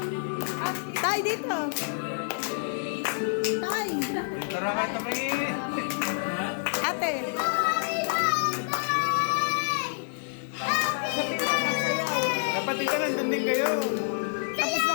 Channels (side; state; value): right; silent; digital silence